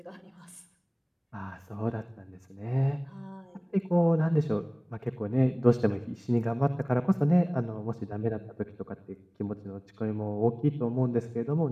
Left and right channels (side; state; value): both; identical; correlation 1.00